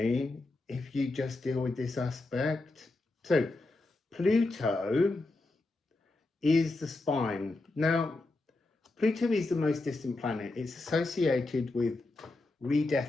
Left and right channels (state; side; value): quieter; right; 3.1 dB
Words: if you just deal with this aspect. So Pluto is the spine. Now, Pluto is the most distant planet. It's associated with